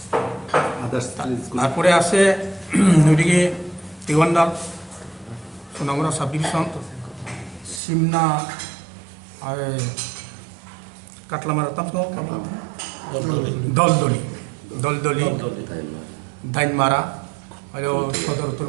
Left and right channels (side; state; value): left; drops out; at 7.8 s